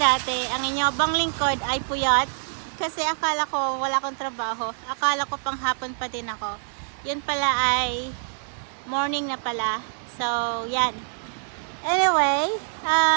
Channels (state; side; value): silent; left; digital silence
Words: ang inyobang lingkod ay puyat. Kasi akala ko wala akong trabaho. Akala ko pang hapon pa din ako. Yun pala ay morning na pala. So, yan. Anyway,